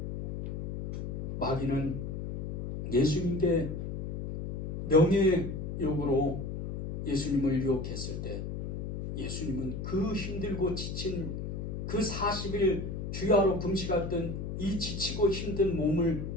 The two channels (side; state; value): left; noise; hum, 5 dB below the sound